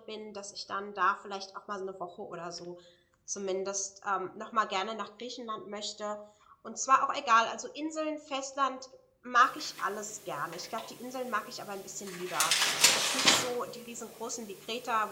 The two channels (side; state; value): both; identical; correlation 1.00